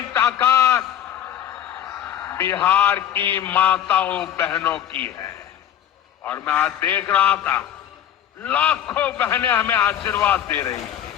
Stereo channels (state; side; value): quieter; right; 10.7 dB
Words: ताकत बिहार की माताओं बहनों की है। और मैं आज देख रहा था लाखों बहनें हमें आशीर्वाद दे रही